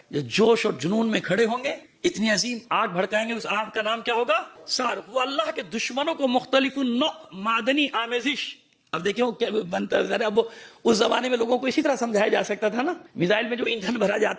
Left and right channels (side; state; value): both; identical; correlation 1.00